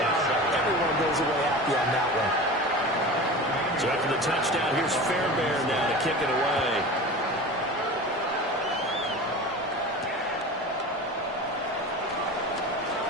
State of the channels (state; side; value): normal; both; correlation 0.33